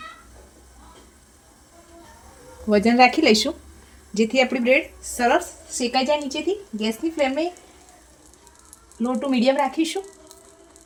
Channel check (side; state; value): both; identical; correlation 1.00